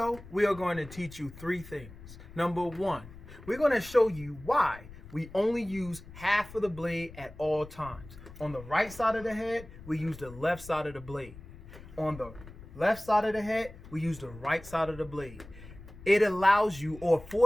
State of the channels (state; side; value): noise; left; rumble, 17 dB below the sound